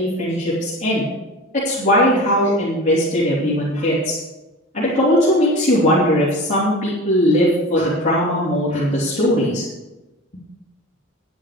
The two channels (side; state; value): both; normal; correlation 0.34